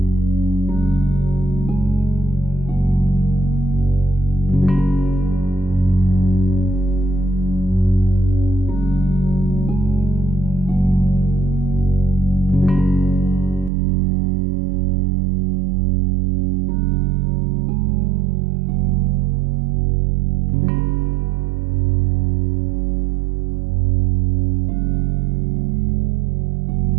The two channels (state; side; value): drops out; left; at 13.7 s